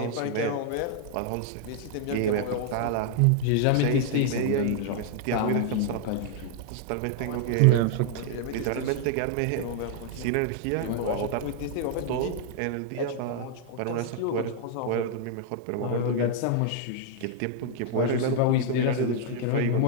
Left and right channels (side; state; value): both; different; correlation -0.01